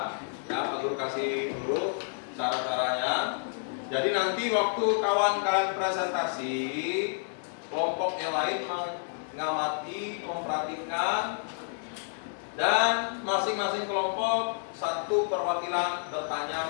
Ya, Pak Guru kasih dulu cara-caranya. Jadi nanti waktu kawan kalian presentasi, kelompok yang lain mengamati, memperhatikan, dan masing-masing kelompok satu perwakilan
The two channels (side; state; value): right; silent; 58 dB below the other